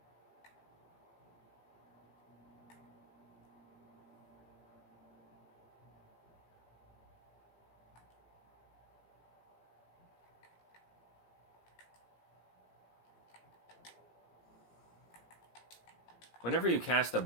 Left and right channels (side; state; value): right; late; 17 ms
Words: Whenever you cast a